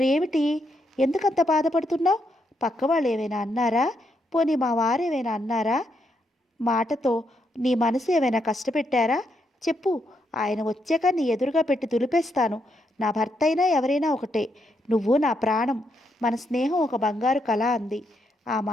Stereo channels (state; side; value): normal; both; correlation 0.79